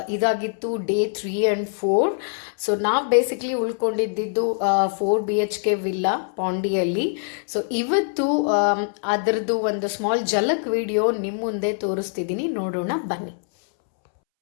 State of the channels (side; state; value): right; silent; 63 dB below the other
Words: ಇದಾಗಿತ್ತು ಡೇ 3 ಆ್ಯಂಡ್ 4. ಸೊ ನಾವು ಬೇಸಿಕ್ಲಿ ಉಳ್ಕೊಂಡಿದ್ದು 4 BHK ವಿಲ್ಲಾ ಪಾಂಡಿಯಲ್ಲಿ. ಸೊ ಇವತ್ತು ಅದರದ್ದು ಒಂದು ಸ್ಮಾಲ್ ಝಲಕ್ ವಿಡಿಯೋ ನಿಮ್ಮ ಮುಂದೆ ತೋರಿಸ್ತಿದ್ದೀನಿ, ನೋಡೋಣ ಬನ್ನಿ.